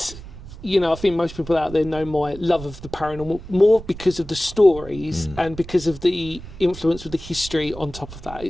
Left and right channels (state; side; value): noise; right; rumble, 14 dB below the sound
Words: I think most people out there know my love of the paranormal more because of the stories and because of the influence of the history on top of that.